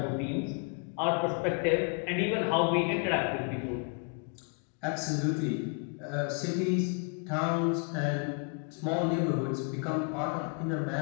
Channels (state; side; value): quieter; right; 39.1 dB